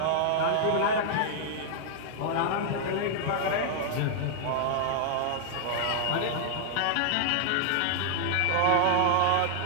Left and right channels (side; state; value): both; different; correlation -0.01